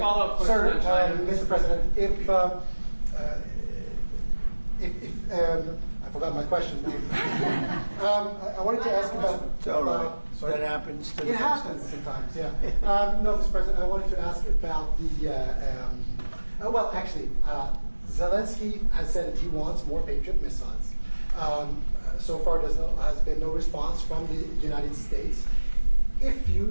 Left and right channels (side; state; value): both; inverted; correlation -1.00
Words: follow-up question. Sir, Mr. President, I forgot my question. I wanted to ask about. It's all right. That happens. It happens sometimes. Yeah. No, Mr. President, I wanted to ask about the. Well, actually, Zelensky has said that he wants more Patriot missiles. So far, has been no response from the United States. If